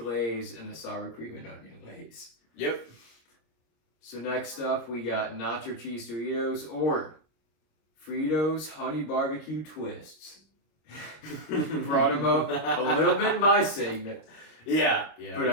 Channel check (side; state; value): right; late; 25 ms